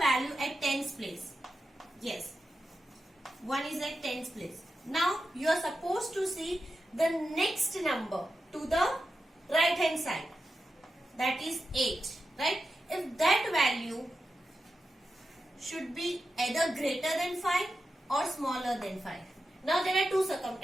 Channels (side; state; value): both; normal; correlation 0.90